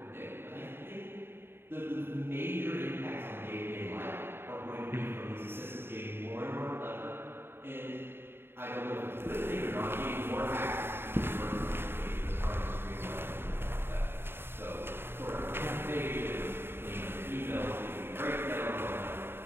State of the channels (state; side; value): late; left; 0.11 ms